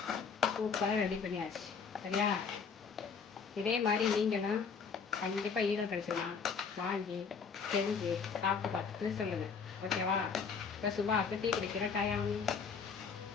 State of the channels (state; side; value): quieter; right; 5.8 dB